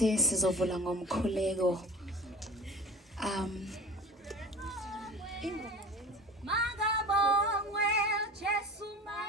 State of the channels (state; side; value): normal; both; correlation 0.38